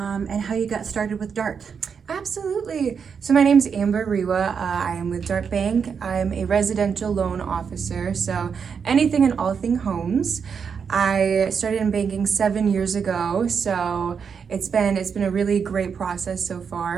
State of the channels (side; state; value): left; quieter; 6.4 dB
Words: how you got started with Dart. Absolutely. So my name's Amber Rewa. I am with Dart Bank. I'm a residential loan officer, so anything and all thing homes. I started in banking 7 years ago, so it's been a really great process so